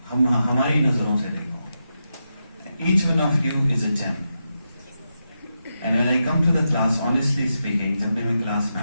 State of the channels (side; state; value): both; inverted; correlation -0.87